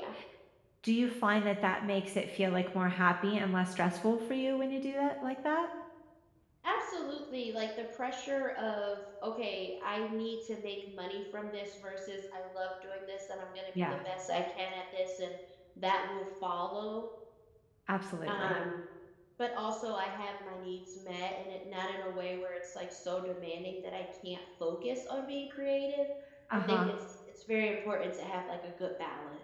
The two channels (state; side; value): identical; both; correlation 1.00